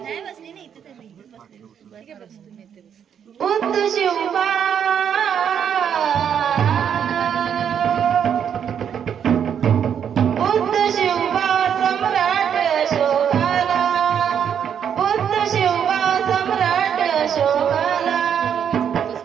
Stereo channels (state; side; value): quieter; left; 8.3 dB